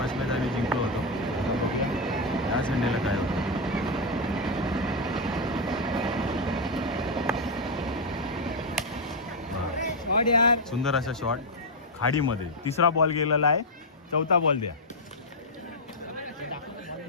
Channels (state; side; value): normal; both; correlation 0.01